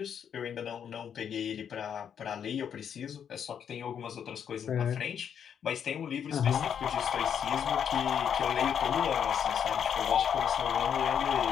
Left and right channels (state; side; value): quieter; right; 8.2 dB